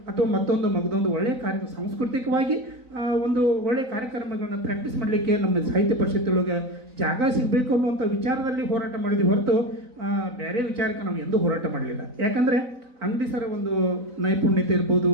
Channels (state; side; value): late; left; 4.0 ms